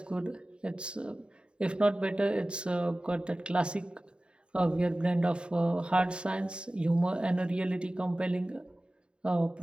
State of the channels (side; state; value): left; late; 0.052 ms